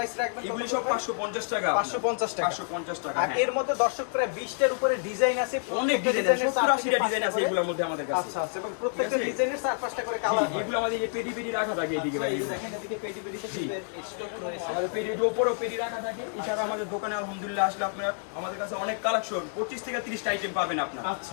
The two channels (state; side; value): silent; right; 59 dB below the other